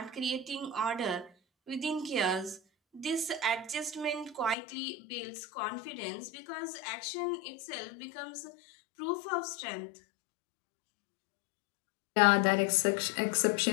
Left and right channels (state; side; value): drops out; right; at 4.5 s